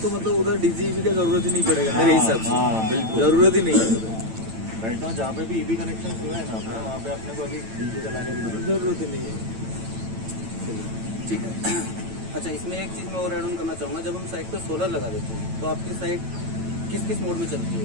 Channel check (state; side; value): late; left; 9.0 ms